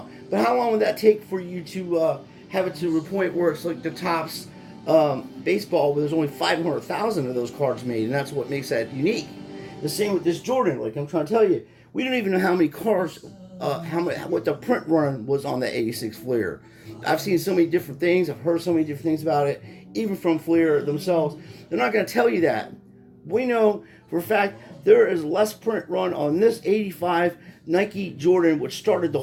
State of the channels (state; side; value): identical; both; correlation 1.00